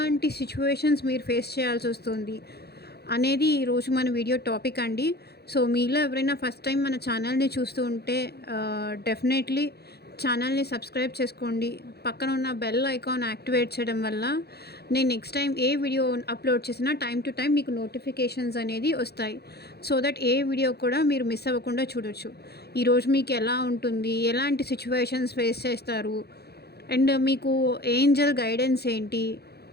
సిచ్యువేషన్స్ మీరు ఫేస్ చేయాల్సొస్తుంది అనేది ఈరోజు మన వీడియో టాపిక్ అండి. సో మీలో ఎవరైనా ఫస్ట్ టైం మన ఛానల్‌ని చూస్తూ ఉంటే డెఫినెట్లీ ఛానల్‌ని సబ్స్క్రైబ్ చేసుకోండి. పక్కన ఉన్న బెల్ ఐకాన్ యాక్టివేట్ చేయడం వల్ల నేను నెక్స్ట్ టైం ఏ వీడియో అప్లోడ్ చేసినా టైం టు టైం మీకు నోటిఫికేషన్స్ అనేది వస్తాయి. సో దట్ ఏ వీడియో కూడా మీరు మిస్ అవ్వకుండా చూడొచ్చు. ఈరోజు మీకు ఎలా ఉంటుంది, ఎలాంటి సిచ్యువేషన్స్ ఫేస్ చేస్తారు, అండ్ మీకు ఏంజెల్ గైడెన్స్ ఏంటి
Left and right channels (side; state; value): right; late; 0.47 ms